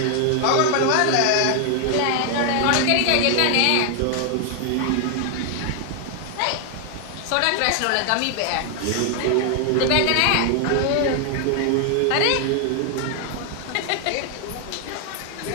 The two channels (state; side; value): different; both; correlation 0.00